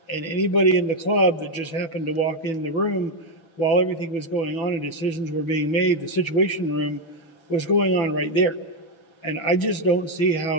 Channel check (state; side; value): late; right; 6.1 ms